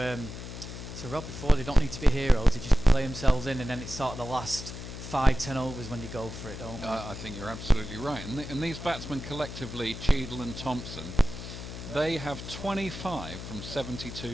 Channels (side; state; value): left; noise; hum, 10 dB below the sound